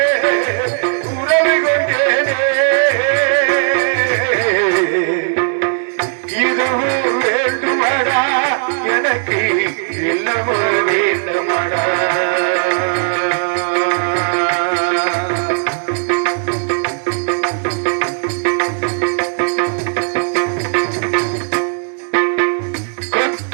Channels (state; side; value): silent; left; 69 dB below the other